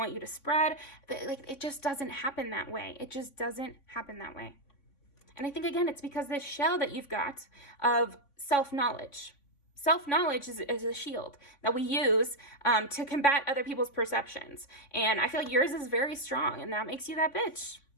you to spread, like, it just doesn't happen that way. It just doesn't happen that way. And I think, again, it's because this shell that you've got of self-knowledge. Self-knowledge is a shield that we use to combat other people's perceptions. And I feel like yours is very strong, and that makes you that bitch.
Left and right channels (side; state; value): right; late; 3.5 ms